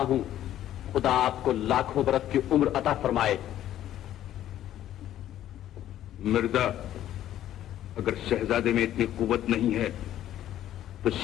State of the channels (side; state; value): right; quieter; 12.2 dB